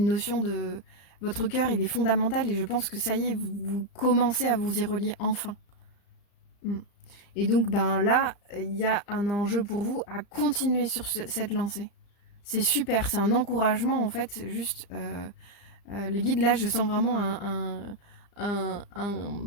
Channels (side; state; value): right; late; 35 ms